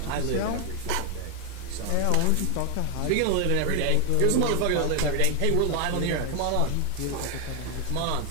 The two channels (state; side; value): different; both; correlation 0.01